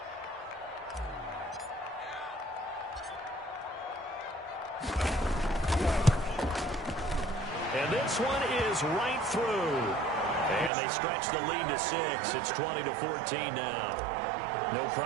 And this one is right through. And they stretch the lead to 6. It's 20-14 now. No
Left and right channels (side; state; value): left; drops out; at 10.7 s